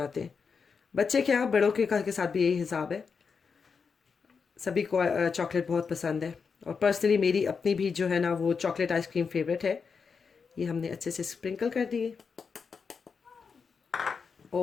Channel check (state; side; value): quieter; right; 5.6 dB